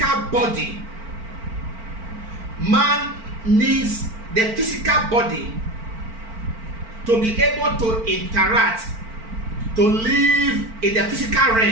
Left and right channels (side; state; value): left; late; 4.4 ms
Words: body. Man needs the physical body to be able to interact, to live in the physical